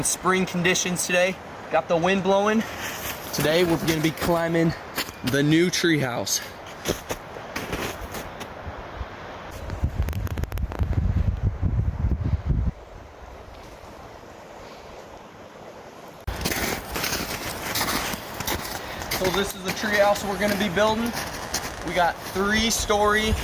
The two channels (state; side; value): identical; both; correlation 1.00